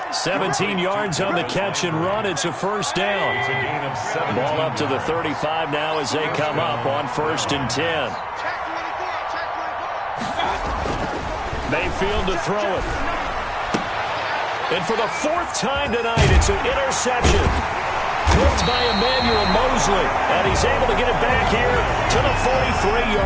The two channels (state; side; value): identical; both; correlation 1.00